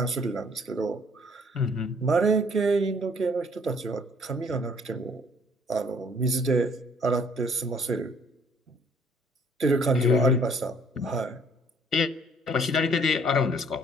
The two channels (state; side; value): normal; both; correlation 0.60